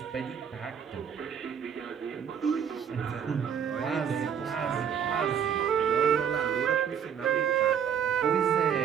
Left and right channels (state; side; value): quieter; left; 8.0 dB